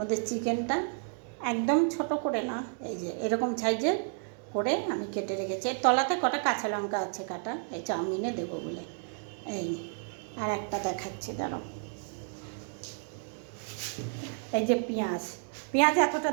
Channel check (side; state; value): left; silent; 57 dB below the other